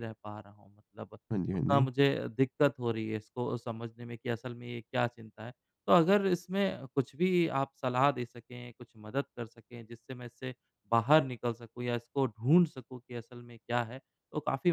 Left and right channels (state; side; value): identical; both; correlation 1.00